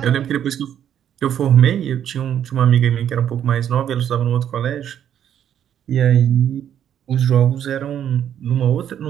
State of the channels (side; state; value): left; quieter; 9.8 dB